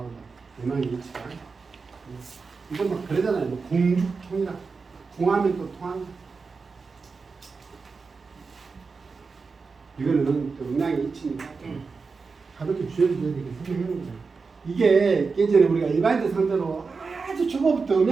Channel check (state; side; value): quieter; left; 4.7 dB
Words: 음악이 있지만 이건 막 그러잖아요. 뭐 공죽통이라 공하면 또 통한다. 이거는 또 음양이 있으니까 가볍게 주여줘야 되게 설명하는 거예요. 이게 예전에 우리가 일반인들 상대로 아주 초보부터